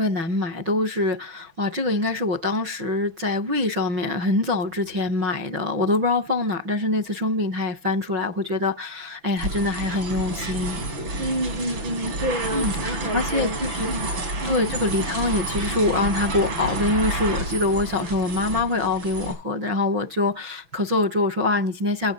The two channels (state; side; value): late; left; 6.1 ms